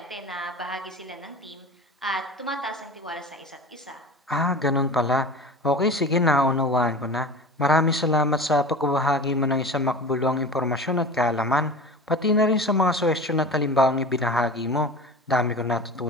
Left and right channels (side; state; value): both; normal; correlation 0.34